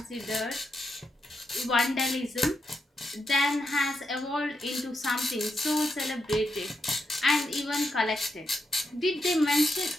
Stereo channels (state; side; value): normal; both; correlation 0.83